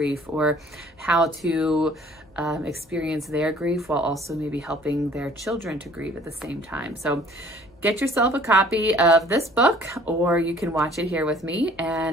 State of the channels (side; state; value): both; normal; correlation 0.54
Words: or how to experience their grief while also maybe helping their children to grieve at the same time. So get yourself a copy of this book, or you can watch it here with me.